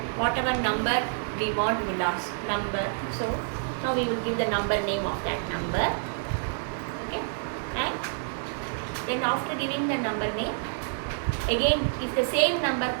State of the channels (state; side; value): silent; left; digital silence